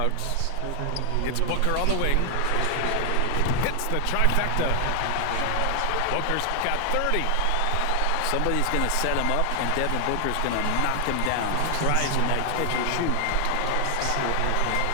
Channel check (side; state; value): both; different; correlation 0.00